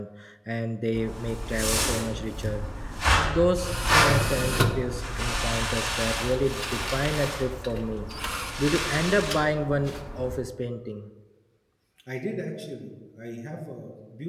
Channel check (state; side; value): identical; both; correlation 1.00